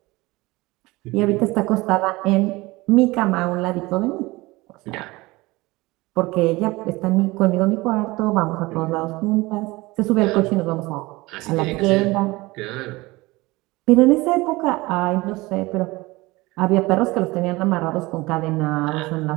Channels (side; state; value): left; quieter; 21.5 dB